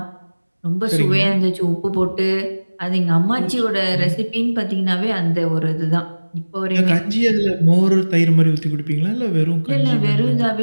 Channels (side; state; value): both; inverted; correlation -1.00